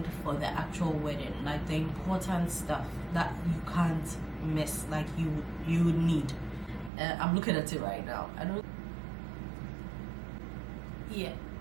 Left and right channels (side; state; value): left; drops out; at 6.9 s